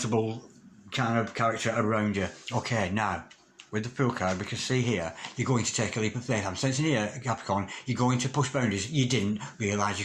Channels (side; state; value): both; identical; correlation 1.00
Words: kind of character around you. Okay, now, with the Fool card, we can see here, you're going to take a leap of faith. I'm sensing here, Capricorn, you're going to push boundaries you didn't realise